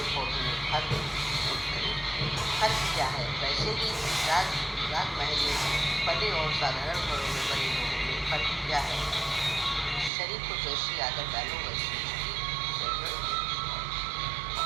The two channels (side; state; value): left; drops out; at 10.1 s